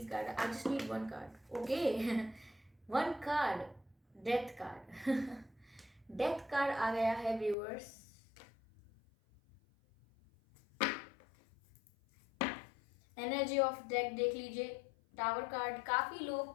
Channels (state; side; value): drops out; right; at 7.6 s